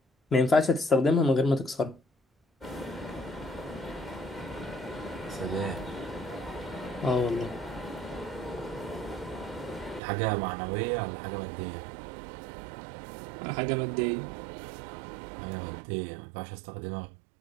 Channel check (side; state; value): left; drops out; at 10.0 s